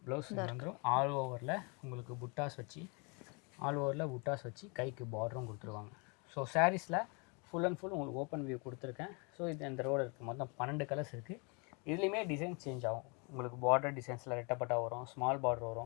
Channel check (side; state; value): right; quieter; 32.7 dB